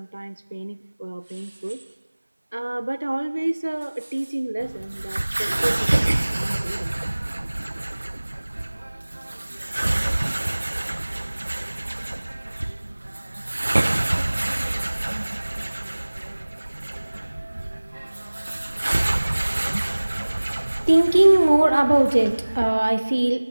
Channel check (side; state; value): both; inverted; correlation -1.00